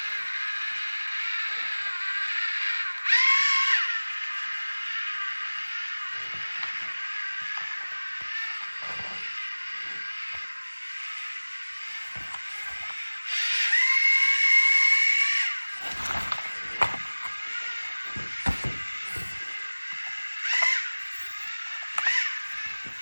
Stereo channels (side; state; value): both; inverted; correlation -1.00